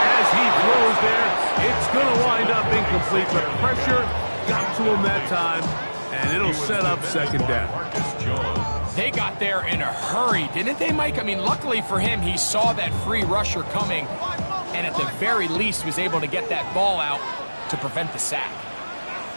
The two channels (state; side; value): inverted; both; correlation -1.00